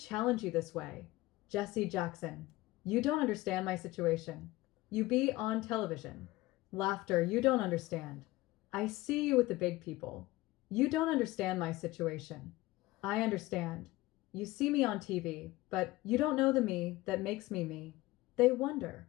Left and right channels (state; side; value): quieter; right; 18.8 dB